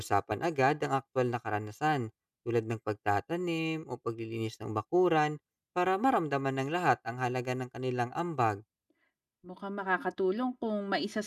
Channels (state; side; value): identical; both; correlation 1.00